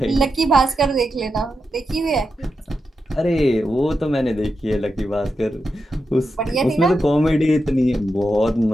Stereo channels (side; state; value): both; normal; correlation 0.88